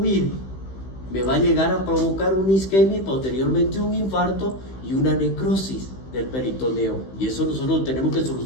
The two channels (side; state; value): right; late; 16 ms